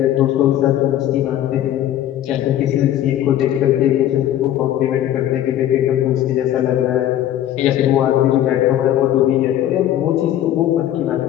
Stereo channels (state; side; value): quieter; right; 12.0 dB